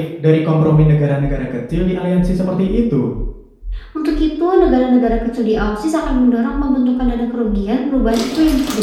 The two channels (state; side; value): identical; both; correlation 1.00